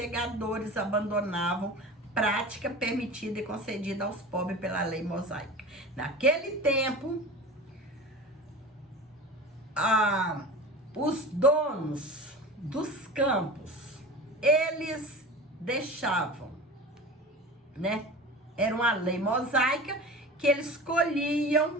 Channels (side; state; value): both; normal; correlation 0.34